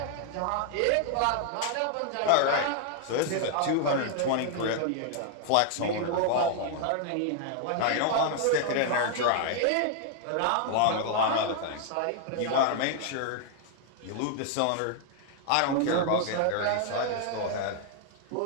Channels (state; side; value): different; both; correlation 0.00